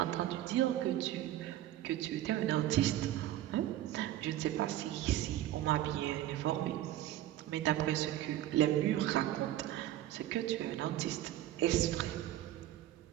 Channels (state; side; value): quieter; left; 13.5 dB